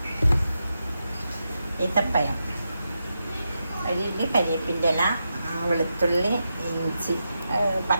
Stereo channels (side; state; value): both; inverted; correlation -0.87